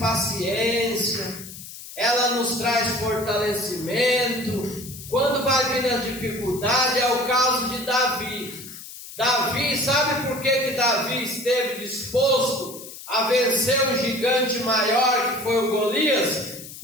ela nos traz fortalecimento. Quando vai vir a dificuldade, é o caso de Davi. Davi, sabe por que Davi esteve disposto a vencer um gigante maior que foi o Golias?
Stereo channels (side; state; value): left; noise; hiss, 14 dB below the sound